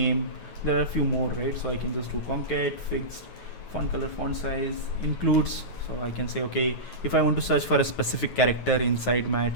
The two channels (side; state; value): right; late; 9.2 ms